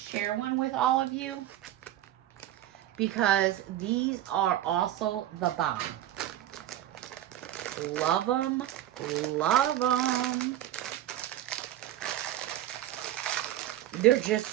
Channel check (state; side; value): quieter; left; 12.9 dB